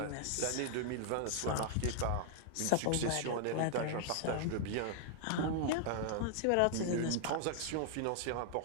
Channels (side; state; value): both; different; correlation -0.01